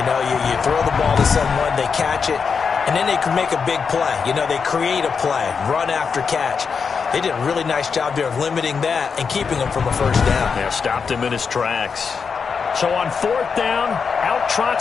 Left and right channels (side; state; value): right; quieter; 5.7 dB